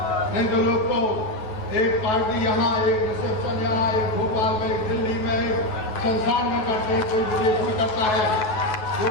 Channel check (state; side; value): late; right; 9.3 ms